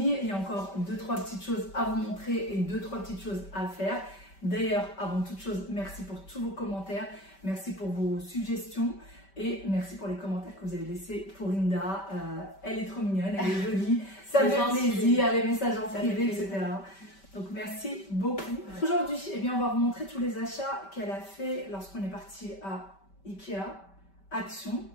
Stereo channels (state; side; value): late; right; 5.2 ms